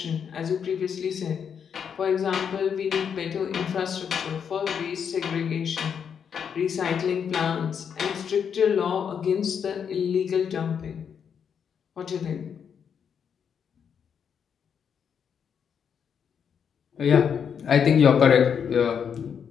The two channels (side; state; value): right; quieter; 7.4 dB